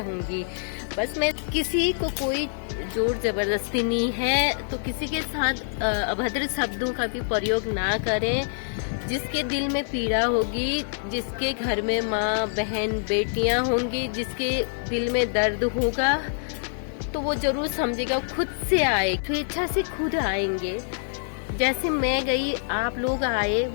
बस मैं किसी को कोई जोर जबरदस्ती नहीं है, तो किसी के साथ अभद्र शब्दों का भी प्रयोग ना करें। जिसके दिल में पीड़ा होगी, जिसके घर में माँ बहन बेटियां होंगी, जिसके दिल में दर्द होगा, तो वो जरूर समझेगा, खुद से आए, स्वेच्छा से खुद आएंगे। जैसे मैं गई, आप लोग आए,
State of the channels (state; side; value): silent; right; digital silence